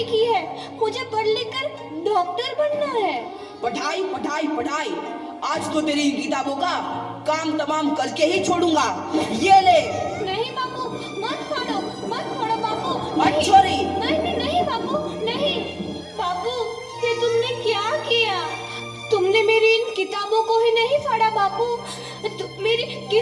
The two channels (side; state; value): both; identical; correlation 1.00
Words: की है, मुझे पढ़ लिख कर डॉक्टर बनना है। पढ़ाई पढ़ाई पढ़ाई, आज तो तेरी किताबों का काम तमाम करके ही छोड़ूंगा। ये ले। नहीं बापू, मत फोड़ो बापू। मत छोड़ी। नहीं बापू, नहीं। बापू, ये तुमने क्या किया? तुमने मेरी इन किताबों को ही नहीं फाड़ा बापू, मेरी